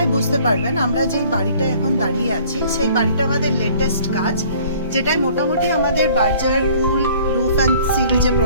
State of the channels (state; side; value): inverted; both; correlation -0.54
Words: বুঝতে পারবেন আমরা যে বাড়িটা এখন দাঁড়িয়ে আছি সেই বাড়িটা আমাদের লেটেস্ট কাজ, যেটাই মোটামুটি আমাদের Berger cool roof and seal যে